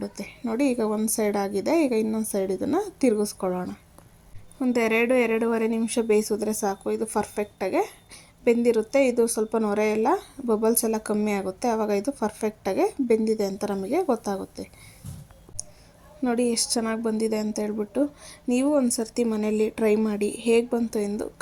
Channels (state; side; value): identical; both; correlation 1.00